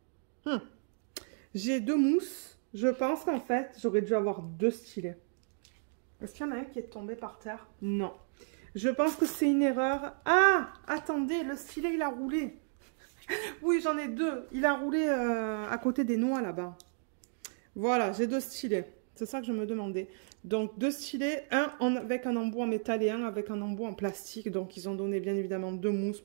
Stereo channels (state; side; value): silent; left; digital silence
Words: J'ai 2 mousses. Je pense qu'en fait, j'aurais dû avoir 2 stylets. Est-ce qu'il y en a un qui est tombé par terre? Non. Je pense que c'est une erreur. Ah, attendez, le stylet, il a roulé. Oui, j'en ai 2. Il a roulé à côté des noix là-bas. Voilà, j'ai 2 stylets. C'est ça que je me demandais. Donc, 2 stylets, un avec un embout en métal et un avec un embout en plastique. Donc, ils ont donné bien évidemment 2 mousses